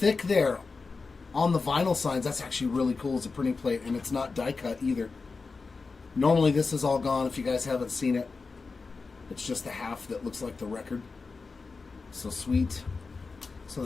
there on the vinyl signs. That's actually really cool as a printing plate, and it's not die cut either. Normally this is all gone if you guys haven't seen it. It's just the half that looks like the record. So sweet. So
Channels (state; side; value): quieter; right; 4.3 dB